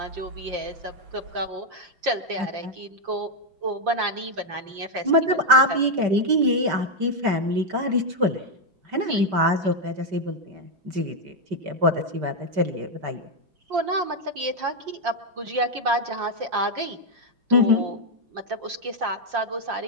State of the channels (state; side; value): late; left; 5.2 ms